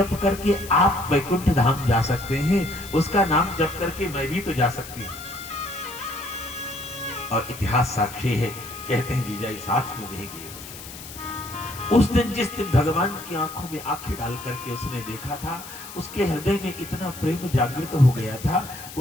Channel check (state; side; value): noise; left; hiss, 14 dB below the sound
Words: करके आप वैकुंठ धाम जा सकते हैं, उसका नाम जप करके मैं भी तो जा सकती हूं। और इतिहास साक्षी है, कहते हैं जीजाई साथ में रह गए। उस दिन जिस दिन भगवान की आंखों में आंखें डाल करके उसने देखा था, उसके हृदय में इतना प्रेम जागृत हो गया था,